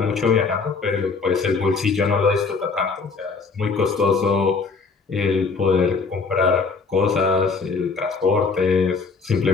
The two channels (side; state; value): right; quieter; 4.6 dB